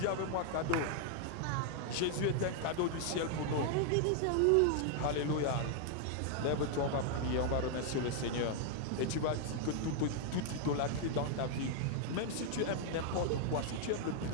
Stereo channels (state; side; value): different; both; correlation 0.00